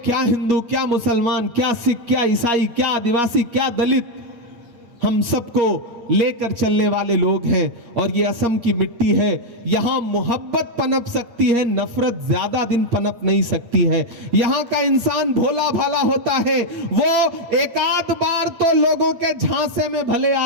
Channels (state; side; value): late; left; 8.4 ms